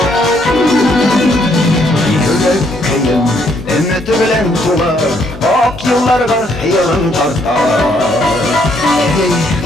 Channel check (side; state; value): both; normal; correlation 0.70